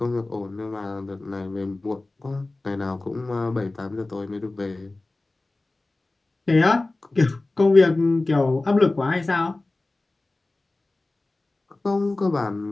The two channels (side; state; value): right; quieter; 3.0 dB